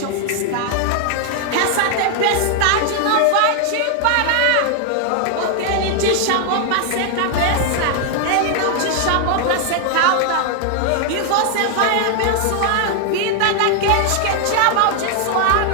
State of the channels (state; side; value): different; both; correlation 0.00